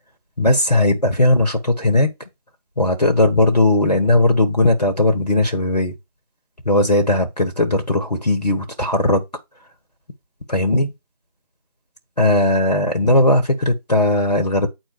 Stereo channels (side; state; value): both; inverted; correlation -0.53